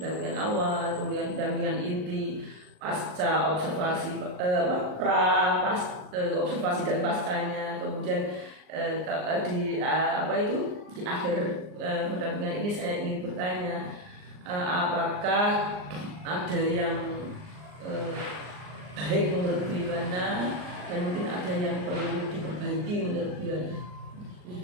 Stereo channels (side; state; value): left; late; 39 ms